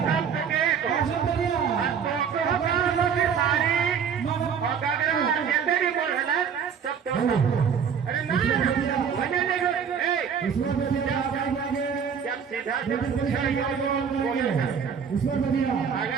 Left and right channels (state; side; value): quieter; left; 7.1 dB